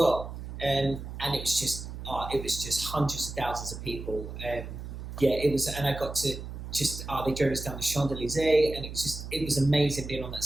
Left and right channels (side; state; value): right; noise; hum, 9 dB below the sound